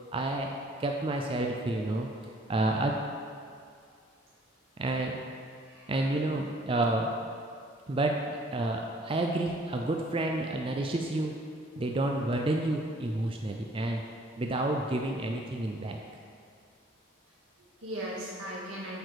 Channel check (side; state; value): both; normal; correlation 0.58